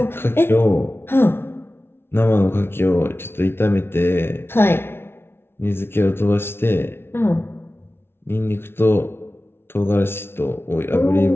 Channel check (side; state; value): right; late; 0.12 ms